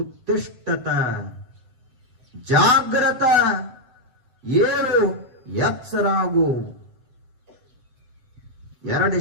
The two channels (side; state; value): left; late; 7.7 ms